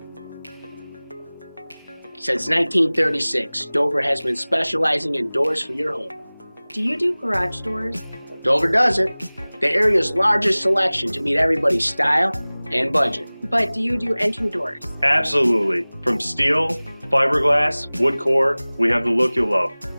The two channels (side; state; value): both; inverted; correlation -1.00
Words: Since 1936, Dover has been specializing in doors for your home. Do you do garage doors? Dover does it. The area's largest selection to meet everybody's style and budget. But do you do entry doors? Absolutely. From steel, fiberglass, wood core, we have the look you'll love.